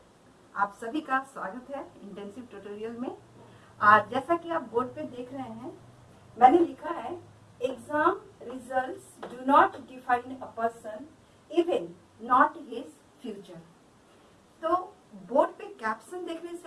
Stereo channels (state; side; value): identical; both; correlation 1.00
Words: आप सभी का स्वागत है इंटेंसिव ट्यूटोरियल में। आज जैसा कि आप बोर्ड पे देख रहे हैं, मैंने लिखा है exam results do not define a person even not his future. तो बोर्ड पे कैप्शन देखने